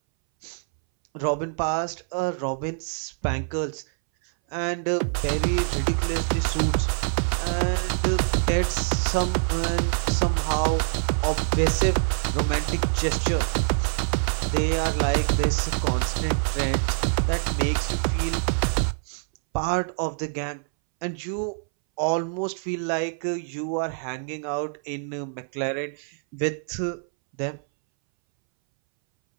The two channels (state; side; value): silent; left; 61 dB below the other